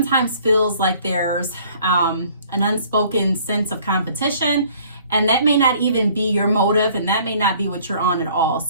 feels like there's an unspoken sense of competition, and that may not even be your motive, and that may not be what you're on at all.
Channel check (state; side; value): inverted; both; correlation -0.56